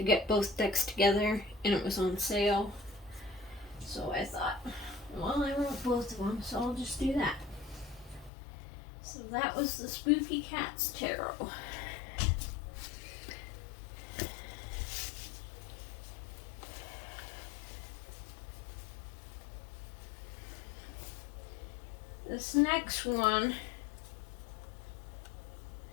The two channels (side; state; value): right; drops out; at 8.3 s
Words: get both decks together, and it was on sale. So I thought, well, I want both of them, so I'll just do that. So that was the Spooky Cats Tarot. This next one,